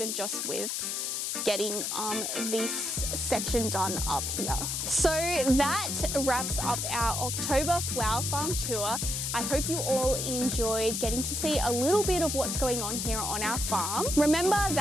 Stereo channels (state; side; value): noise; left; hiss, 1 dB below the sound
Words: just with getting this section done up here. So that wraps up our October flower farm tour. I hope you all enjoyed getting to see a little bit of what's going on here on our farm. Remember